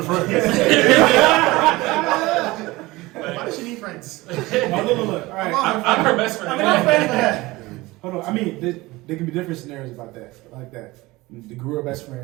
friends? Why does she need friends? Oh, look. All right. I'm her best friend. I'm friends with her. Hold on. I mean, there can be different scenarios about that, like that. The grew up best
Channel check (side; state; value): left; quieter; 20.6 dB